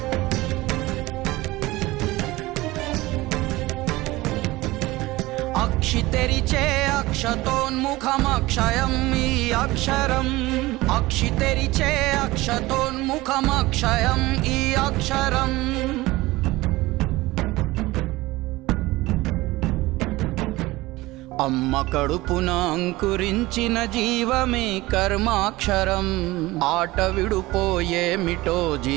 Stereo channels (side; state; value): left; quieter; 19.6 dB